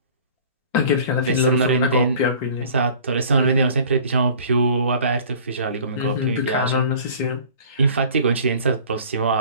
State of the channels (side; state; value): both; inverted; correlation -0.47